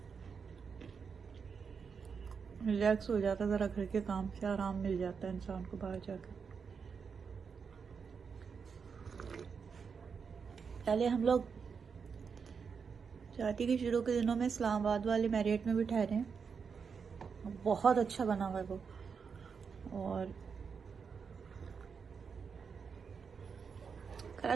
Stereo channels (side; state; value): left; quieter; 5.9 dB